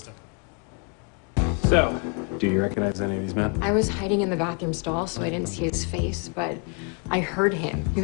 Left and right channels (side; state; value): right; quieter; 38.0 dB